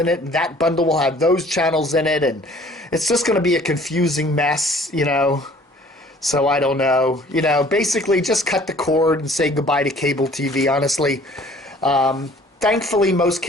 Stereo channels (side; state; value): both; normal; correlation 0.53